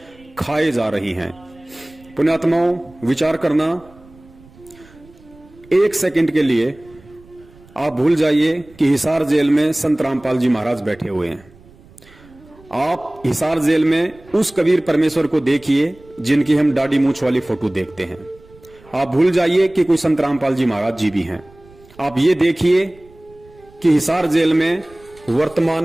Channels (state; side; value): noise; right; rumble, 26 dB below the sound